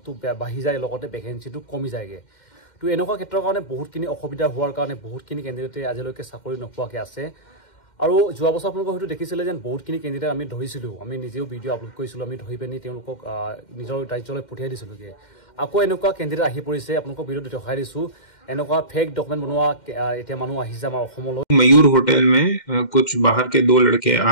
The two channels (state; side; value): late; right; 2.1 ms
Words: বাঢ়ি যায় লগতে ভেকেন্সিটো কমি যায়গে তো এনেকুৱা ক্ষেত্ৰৰ কাৰণে বহুতখিনি অসুবিধা হোৱাৰ কাৰণে বহুতখিনি কেন্দ্ৰতে আজিলৈকে চাকৰি নোপোৱাকৈ আছে আৰু যোৱা বছৰ আপোনালোকে হয়তো দেখিছিলে যে বহুতখিনি কেন্দ্ৰতে আমি ধৰিছিলোঁ আমি নিজেও ভিডিঅ' আপলোড কৰিছিলোঁ আমি ধৰি পিনি তেওঁলোকক নিজৰ ৰাজ্যলৈ পঠিয়াই দিছিলোঁগৈ আকৌ এনেকুৱা কেন্দ্ৰতে আহি পৰিছে আপোনালোকক ভিডিঅ'ত দেখাই দিছোঁ এনেকুৱা फेक डॉक्यूमेंट बनवा इतना मानु आहिजा हमारा अखमलो मयूर होटल में कुछ बाहर के दो लड़के